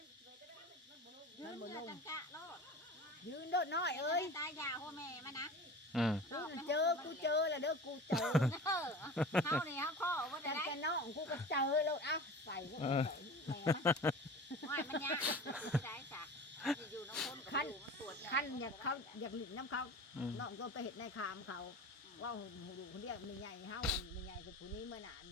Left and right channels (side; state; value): both; normal; correlation 0.35